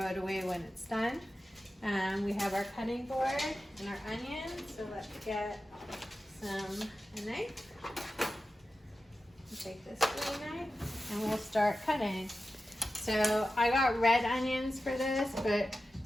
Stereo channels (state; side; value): normal; both; correlation 0.93